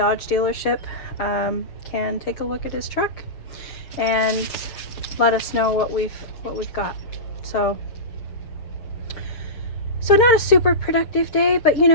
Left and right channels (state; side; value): late; right; 6.6 ms